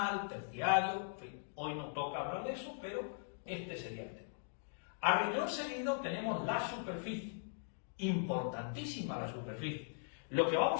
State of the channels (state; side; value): silent; right; digital silence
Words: terciario, en fin, hoy nos toca hablar de eso, pero este sería el tema. A renglón seguido tenemos la superficie, importantísima la superficie. Lo que